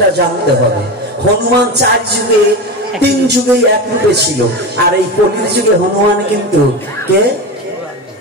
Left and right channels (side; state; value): both; normal; correlation 0.22